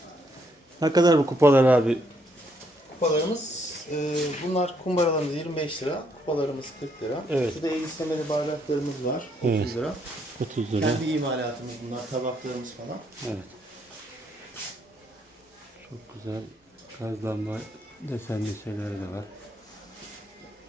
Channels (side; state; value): both; normal; correlation 0.72